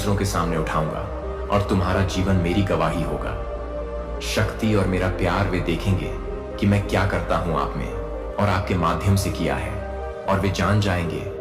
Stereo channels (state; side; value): identical; both; correlation 1.00